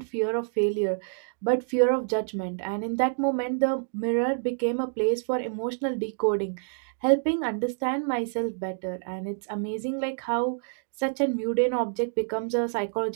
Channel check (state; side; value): silent; left; digital silence